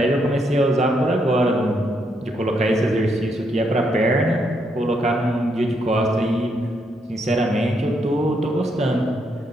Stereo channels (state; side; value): normal; both; correlation 0.77